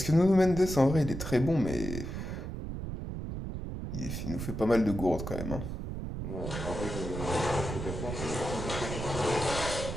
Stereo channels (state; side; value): noise; right; rumble, 6 dB below the sound